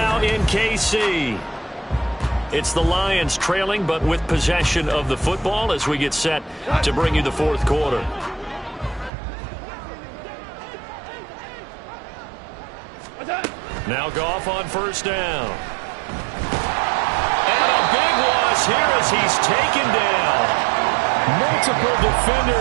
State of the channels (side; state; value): left; drops out; at 9.1 s